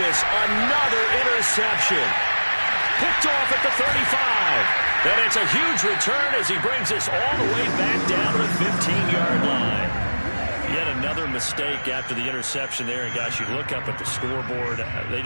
another interception. Picked off at the 35. And it's a huge return as he brings us all the way back down to the 15-yard line. Yet another mistake after the interception there. And, gosh, you look up at the scoreboard, they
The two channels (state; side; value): inverted; both; correlation -1.00